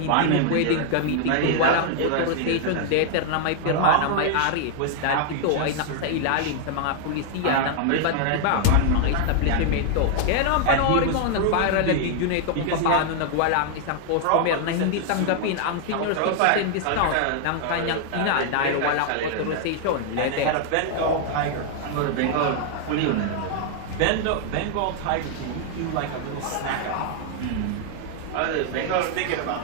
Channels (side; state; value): both; different; correlation 0.00